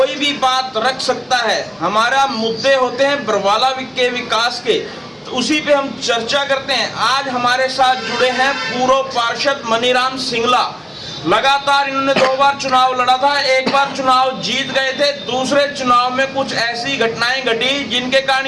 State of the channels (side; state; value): both; identical; correlation 1.00